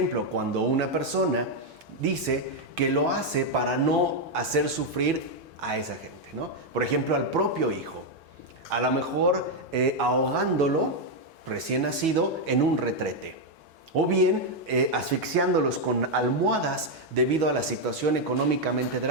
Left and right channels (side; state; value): both; normal; correlation 0.01